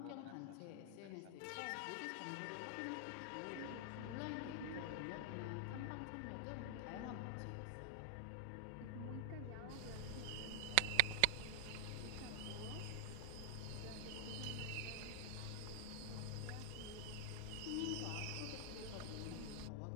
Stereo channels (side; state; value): both; different; correlation 0.00